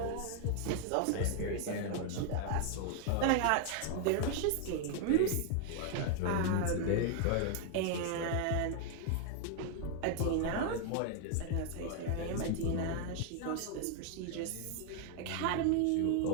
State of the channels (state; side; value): different; both; correlation 0.00